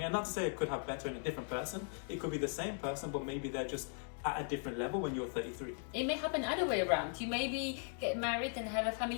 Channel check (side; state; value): right; silent; 52 dB below the other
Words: And not to say I could have better in a different person. It could be the same person, but maybe they're just at a different level when you're 33. It may happen either way around. You maybe get married and have a